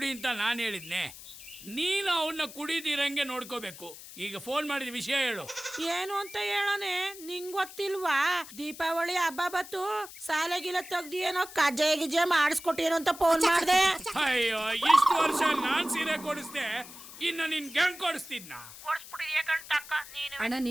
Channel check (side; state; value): left; noise; hiss, 15 dB below the sound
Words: ಅಂತ ನಾನ್ ಹೇಳಿದ್ನೆ. ನೀನು ಅವನ್ನ ಕುಡಿದಿರಂಗೆ ನೋಡ್ಕೋಬೇಕು. ಈಗ ಫೋನ್ ಮಾಡಿದ ವಿಷಯ ಹೇಳು. ಏನು ಅಂತ ಹೇಳನೆ, ನಿಂಗ್ ಗೊತ್ತಿಲ್ವಾ? ದೀಪಾವಳಿ ಹಬ್ಬ ಬತ್ತು, ಸಾಲೆಗಿಲ ತೆಗ್ದಿ ಏನೋ ಕಜ್ಜೆ ಗಿಜ್ಜೆ ಮಾಡಿಸ್ಕೊಟ್ಟೇನೋ ಅಂತ ಫೋನ್ ಮಾಡ್ದೆ. ಅಯ್ಯೋ, ಇಷ್ಟು ವರ್ಷ ನಾನ್ ಸೀರೆ ಕೊಡಿಸ್ದೆ, ಇನ್ನ ನಿನ್ ಗಂಗ್ ಕೊಡಿಸ್ತಿದ್ನ? ಅಣ್ಣ